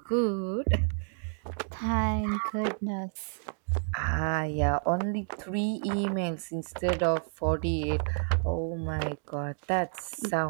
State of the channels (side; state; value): left; silent; 58 dB below the other